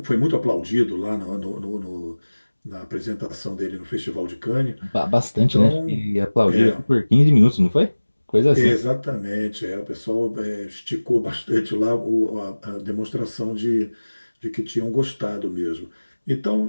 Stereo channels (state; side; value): inverted; both; correlation -1.00